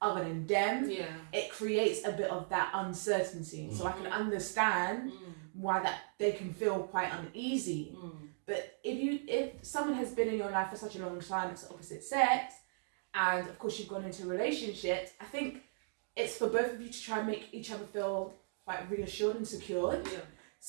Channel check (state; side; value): silent; left; digital silence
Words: other than them, it creates a bit of that uncertainty. So I can understand why that they can feel quite uneasy. But if someone has been in your life for such a long time, it's the opposite sex, and of course you've gone into relationships, I think it's for both of you to try and make each other feel quite reassured and secured. Yeah.